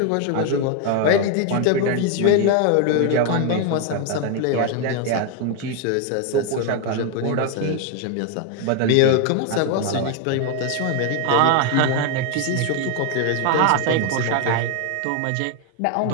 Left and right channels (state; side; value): different; both; correlation 0.01